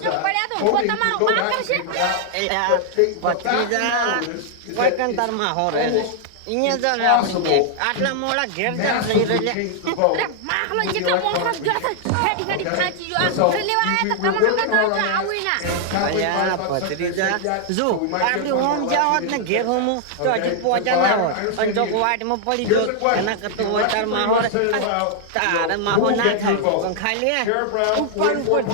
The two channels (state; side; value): different; both; correlation 0.00